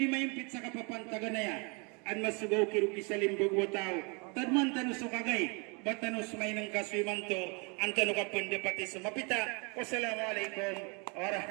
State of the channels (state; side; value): quieter; left; 32.4 dB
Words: mayimpit sa kapapantaga na yan. An masugaw kiruki sa limbog wa tao. Tadman tano sukagay. Batanos may ng kaswimanto. Ang tano ka pandapati sumapita. Wassalamualaikum